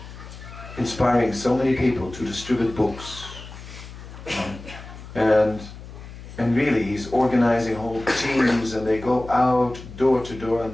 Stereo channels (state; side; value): noise; left; hum, 14 dB below the sound